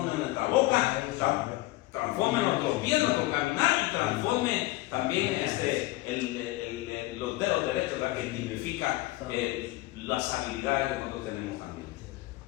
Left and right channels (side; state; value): right; quieter; 19.0 dB